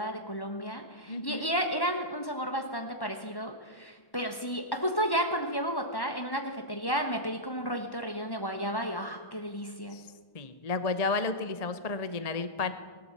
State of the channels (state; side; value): late; right; 1.1 ms